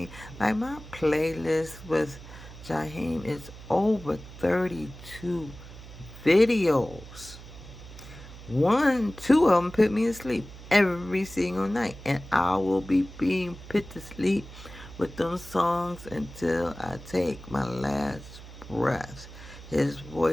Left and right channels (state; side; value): noise; right; hum, 16 dB below the sound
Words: like my playlist with Jaheim is over 32 videos. Two of them put me to sleep every single night, and I will be being put to sleep with them songs until I take my last breath. His